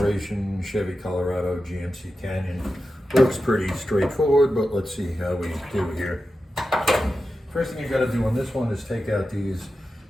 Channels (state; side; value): normal; both; correlation 0.91